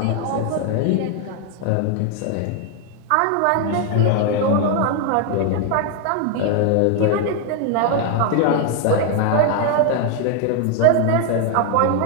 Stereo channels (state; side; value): different; both; correlation 0.00